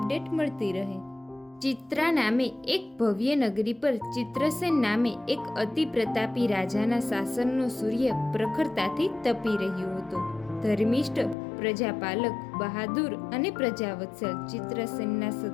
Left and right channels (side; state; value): right; drops out; at 11.4 s